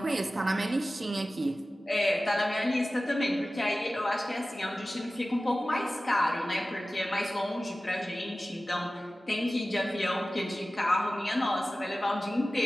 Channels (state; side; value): normal; both; correlation 0.96